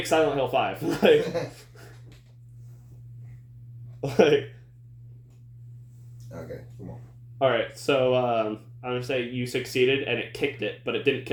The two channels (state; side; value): identical; both; correlation 1.00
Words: Silent Hill 5. Okay, come on. Alright, so I'm gonna say you succeeded and it kicked it, but it didn't